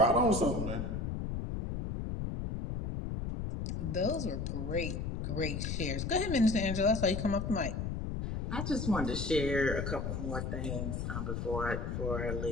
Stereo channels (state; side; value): noise; left; rumble, 3 dB below the sound